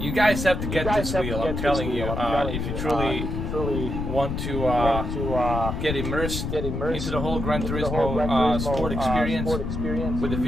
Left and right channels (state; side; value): noise; left; rumble, 3 dB below the sound